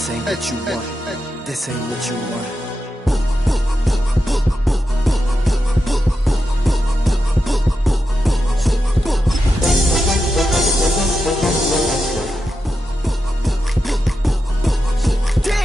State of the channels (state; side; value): normal; both; correlation 0.88